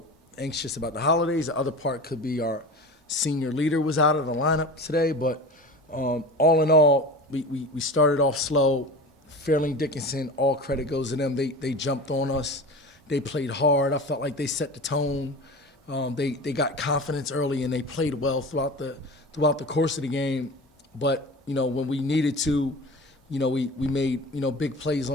anxious about the holidays. The other part could be our senior leader was out of the lineup today. But all in all, we started off slow. Fairleigh Dickinson, all credit goes to them. They jumped on us. They played hard. I felt like they set the tone. They got confidence early, and they played well throughout the course of the game. But, when we needed to, we made, big plays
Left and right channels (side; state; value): both; normal; correlation 0.32